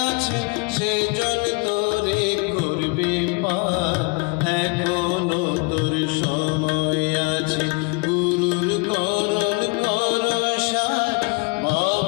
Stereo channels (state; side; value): quieter; right; 29.9 dB